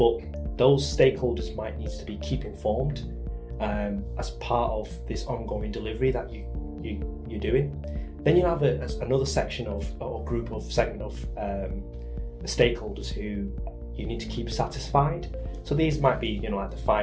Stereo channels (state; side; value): identical; both; correlation 1.00